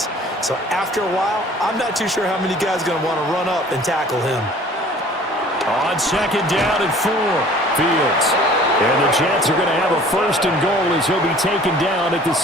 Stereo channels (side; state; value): both; normal; correlation 0.50